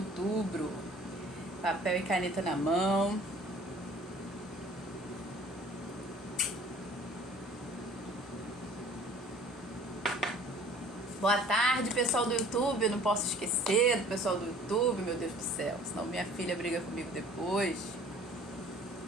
Papel e caneta na mão. Boa tarde, pessoal do YouTube. Eu não posso esquecer do pessoal do YouTube, meu Deus do céu. Senão minha filha briga comigo depois.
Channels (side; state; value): both; normal; correlation 0.51